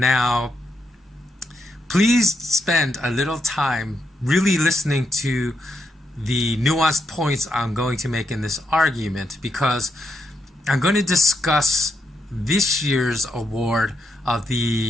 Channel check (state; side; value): normal; both; correlation 0.81